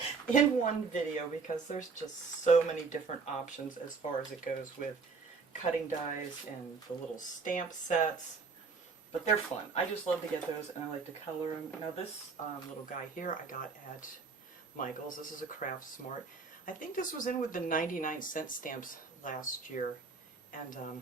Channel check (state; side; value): quieter; left; 4.7 dB